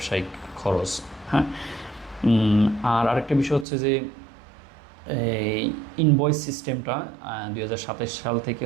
খরচ। হ্যাঁ, আর আরেকটা বিষয় হচ্ছে যে এই ইনভয়েস সিস্টেমটা 2027 সাল থেকে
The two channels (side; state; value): left; drops out; at 3.7 s